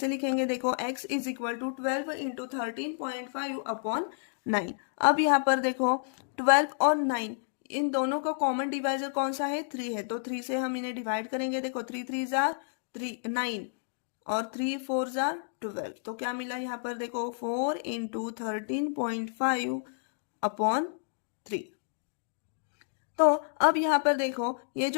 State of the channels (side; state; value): right; silent; digital silence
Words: लिखेंगे, देखो x is equal to 12 into 13.5 upon 9। अब यहाँ पर देखो 12 और 9 इन दोनों का कॉमन डिवाइजर कौन सा है, 3 है। तो 3 से हम इन्हें डिवाइड करेंगे, देखो 3 3 जार 9 और 3 4 जार 12। तो क्या मिला यहाँ पर, देखो 4 इंटू 13.5 अपॉन 3। तो अब यहाँ पर देखो ये